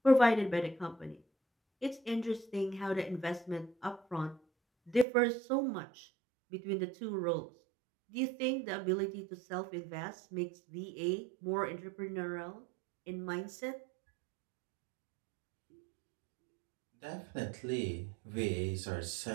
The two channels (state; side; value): drops out; left; at 5.1 s